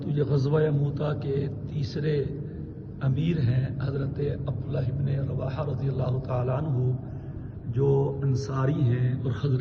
یہ غزوہ موتا کے تیسرے امیر ہیں حضرت عبداللہ ابن رواحہ رضی اللہ تعالیٰ عنہ، جو انصاری ہیں اور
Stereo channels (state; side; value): identical; both; correlation 1.00